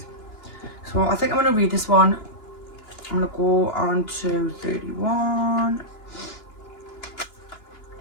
so I think I'm going to read this one. I'm going to go on to 31.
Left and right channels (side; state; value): right; late; 2.8 ms